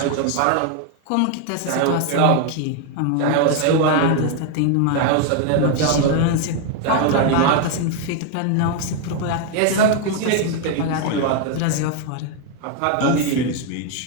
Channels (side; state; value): both; different; correlation 0.01